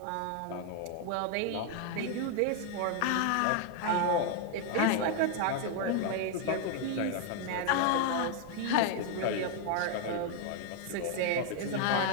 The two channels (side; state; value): both; different; correlation 0.00